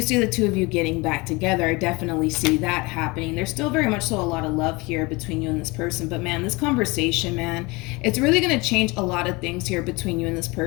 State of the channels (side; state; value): right; quieter; 25.1 dB